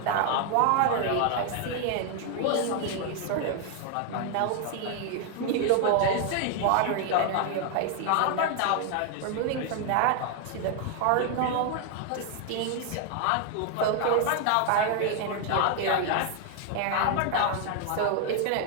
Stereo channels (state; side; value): different; both; correlation 0.00